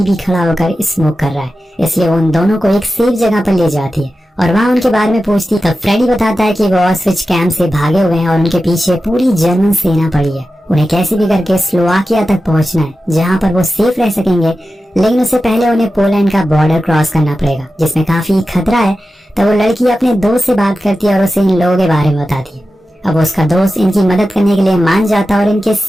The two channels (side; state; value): both; normal; correlation 0.93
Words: ही खड़ा होकर स्मोक कर रहा है, इसलिए वो उन दोनों को एक सेफ जगह पर ले जाती है और वहाँ उनके बारे में पूछती। तब फ्रेडी बताता है कि वो ऑस्विच कैंप से भागे हुए हैं और उनके पीछे पूरी जर्मन सेना पड़ी है। उन्हें कैसे भी करके स्लोवाकिया तक पहुंचना है, जहां पर वो सेफ रह सकेंगे, लेकिन उससे पहले उन्हें पोलैंड का बॉर्डर क्रॉस करना पड़ेगा, जिसमें काफी खतरा है। तब वो लड़की अपने दोस्त से बात करती है और उसे इन लोगों के बारे में बताती है। अब उसका दोस्त इनकी मदद करने के लिए मान जाता और इनके